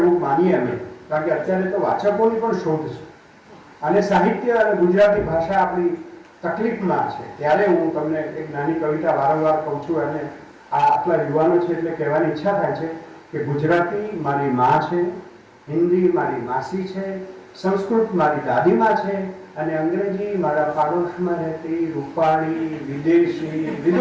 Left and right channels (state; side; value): identical; both; correlation 1.00